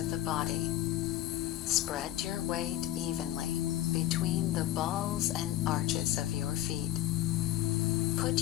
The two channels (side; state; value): right; quieter; 13.2 dB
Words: the body. Spread your weight evenly between the balls and arches of your feet. Put